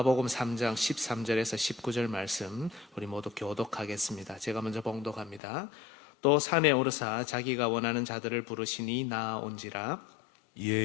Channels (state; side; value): drops out; right; at 5.4 s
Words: 3장 13절에서 19절 말씀 우리 모두 교독하겠습니다. 제가 먼저 봉독합니다. 또 산에 오르사 자기가 원하는 자들을 부르시니 나아온지라.